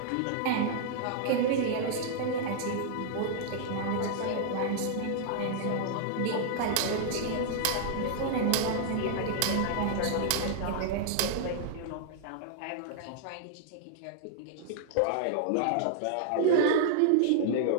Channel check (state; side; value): different; both; correlation -0.01